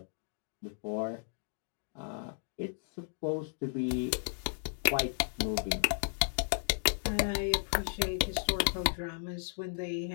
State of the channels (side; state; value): right; silent; digital silence